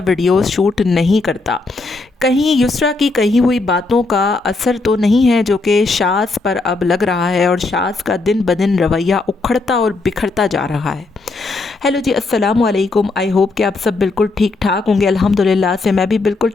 वीडियोस शूट नहीं करता। कहीं युसरा की कही हुई बातों का असर तो नहीं है जो कि शाज़ पर अब लग रहा है और शाज़ का दिन ब दिन रवैया उखड़ता और बिखरता जा रहा है। हेलो जी, अस्सलाम वालेकुम। आई होप कि आप सब बिल्कुल ठीक ठाक होंगे। अल्हम्दुलिल्लाह से मैं भी बिल्कुल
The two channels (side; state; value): right; quieter; 3.5 dB